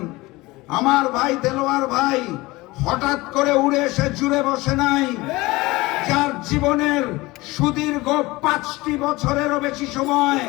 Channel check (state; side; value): quieter; right; 21.0 dB